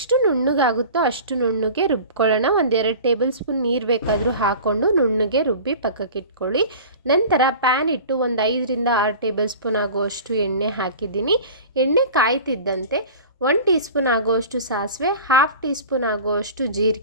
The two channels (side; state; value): both; inverted; correlation -0.38